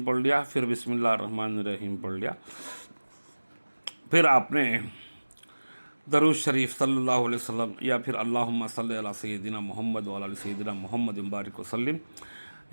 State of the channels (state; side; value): inverted; both; correlation -1.00